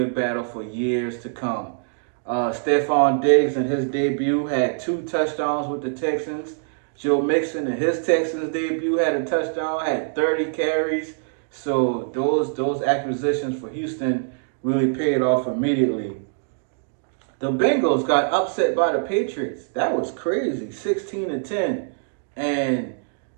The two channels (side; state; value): left; silent; digital silence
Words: battle for years to come. Stephon Diggs in his debut had 2 touchdowns with the Texans. Joe Mixon in his Texans debut had a touchdown, had 30 carries. So those acquisitions for Houston really paid off immediately. The Bengals got upset by the Patriots. That was crazy, 16-10. And